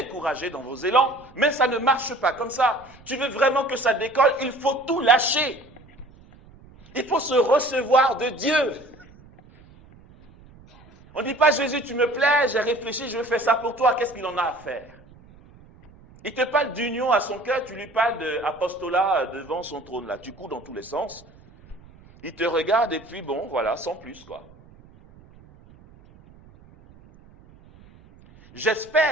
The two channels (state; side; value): noise; right; rumble, 24 dB below the sound